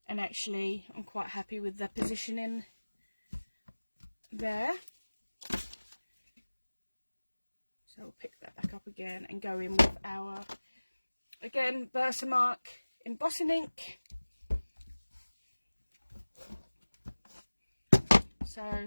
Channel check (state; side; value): inverted; both; correlation -1.00